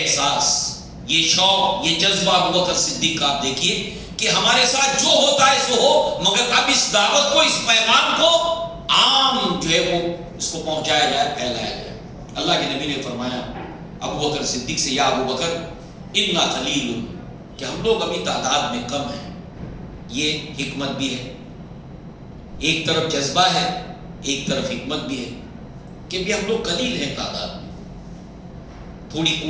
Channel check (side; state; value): both; identical; correlation 1.00